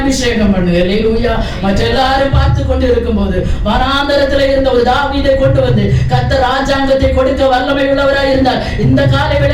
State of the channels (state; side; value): identical; both; correlation 1.00